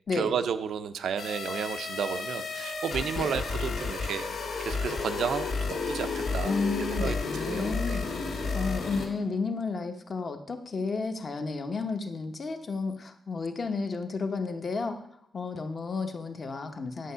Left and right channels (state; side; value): normal; both; correlation 0.77